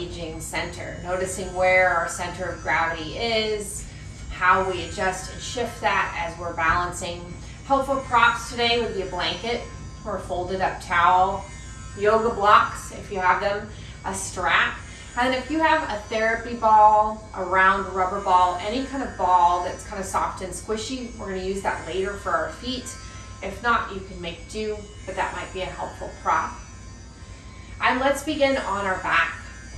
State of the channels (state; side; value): identical; both; correlation 1.00